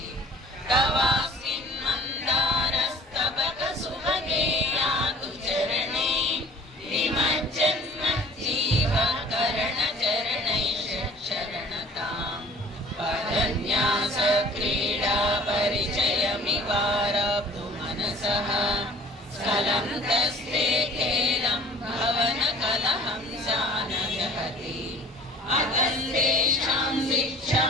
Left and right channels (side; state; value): both; normal; correlation 0.49